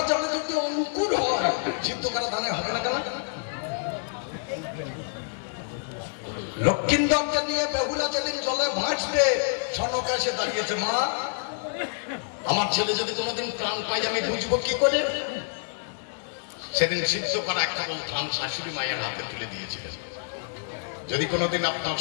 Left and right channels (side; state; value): right; silent; digital silence